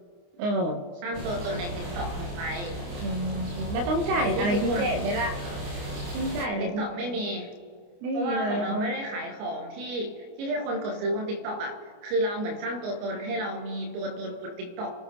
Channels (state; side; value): late; left; 29 ms